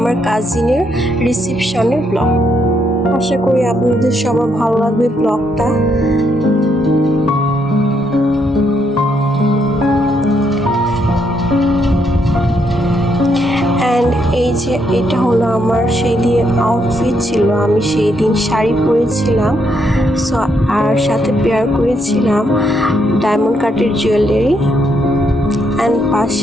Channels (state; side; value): normal; both; correlation 0.76